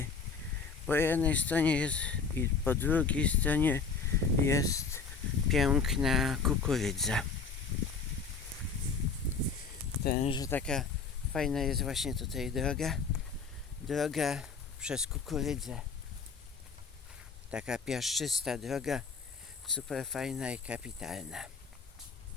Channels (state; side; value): quieter; right; 5.1 dB